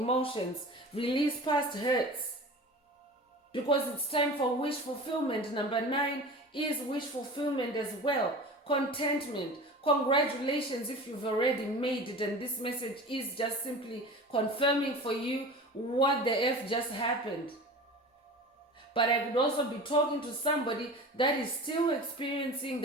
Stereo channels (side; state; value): both; normal; correlation 0.35